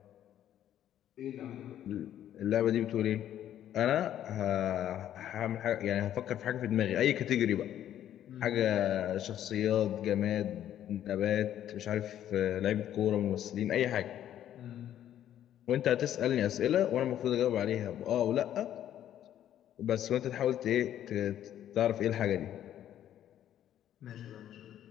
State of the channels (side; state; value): right; quieter; 11.2 dB